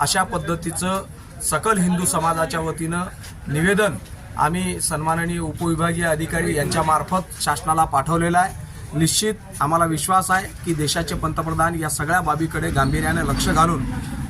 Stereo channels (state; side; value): identical; both; correlation 1.00